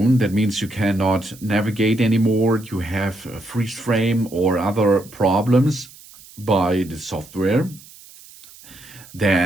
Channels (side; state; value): right; noise; hiss, 21 dB below the sound